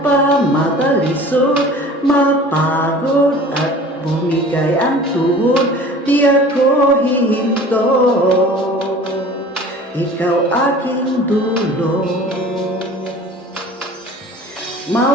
pa matalisod, mapagod at bumigay ang tuhod, di ako hihinto. Ikaw aking dulo.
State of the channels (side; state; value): both; normal; correlation 0.43